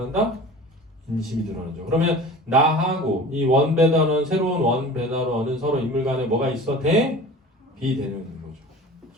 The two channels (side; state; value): both; normal; correlation 0.40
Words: 인심이 드러나죠. 그러면 나하고 이 원 배달원, 새로운 원 배달원은 서로 인물 간에 뭐가 있어? 비대면인 거죠.